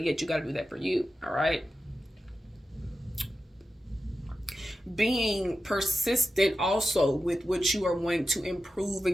you got to do that for you, all right? Being persistent also with what you are wanting to improve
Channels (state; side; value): normal; both; correlation 0.92